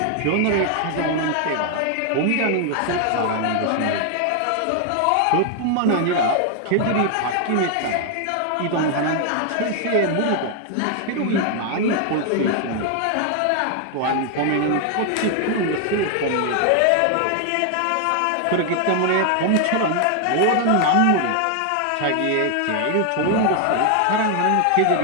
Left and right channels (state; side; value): different; both; correlation 0.00